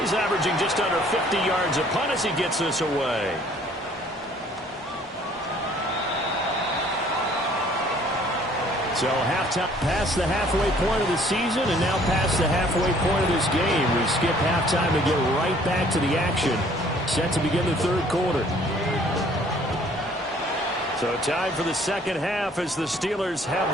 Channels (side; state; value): both; normal; correlation 0.58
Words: averaging just under 50 yards a punt as he gets this away. So halftime, past the halfway point of the season, and now past the halfway point of this game. We skip halftime to get right back to the action. Set to begin the third quarter. So time for the second half as the Steelers have